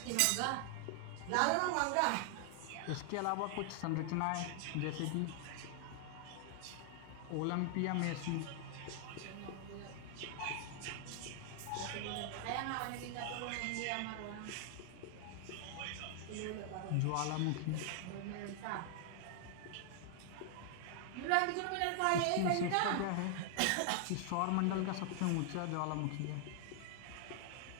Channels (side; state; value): both; different; correlation 0.00